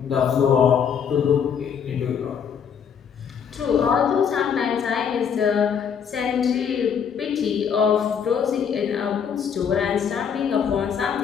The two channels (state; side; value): quieter; right; 7.4 dB